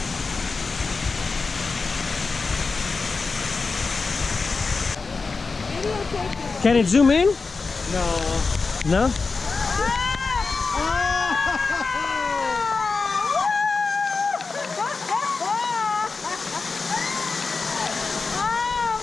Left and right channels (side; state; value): right; quieter; 4.3 dB